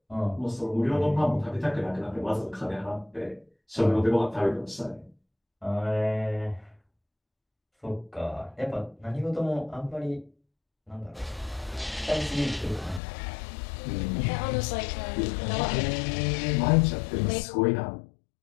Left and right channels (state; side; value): drops out; right; at 13.0 s